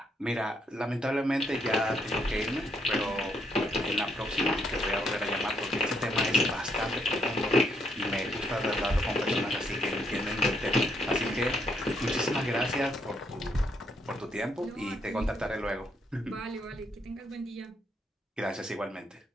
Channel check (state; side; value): normal; both; correlation 0.73